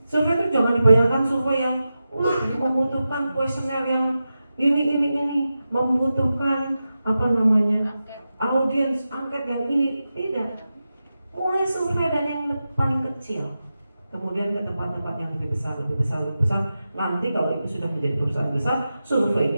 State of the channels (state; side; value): inverted; both; correlation -0.92